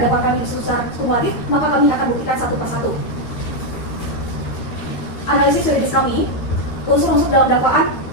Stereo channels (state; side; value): late; right; 13 ms